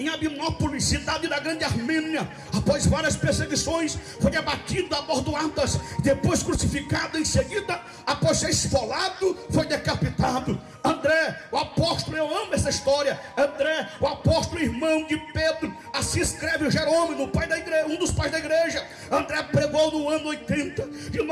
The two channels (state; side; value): identical; both; correlation 1.00